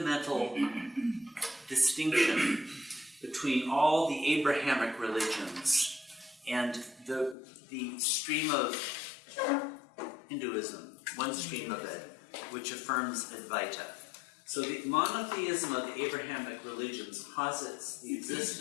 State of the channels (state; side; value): drops out; right; at 7.4 s